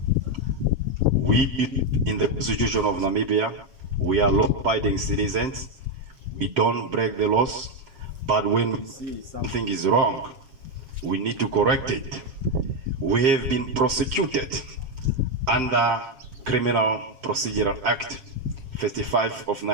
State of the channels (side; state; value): left; late; 7.3 ms